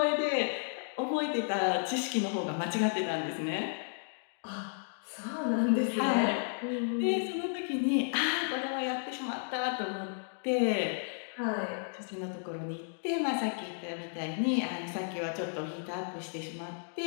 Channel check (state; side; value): silent; right; digital silence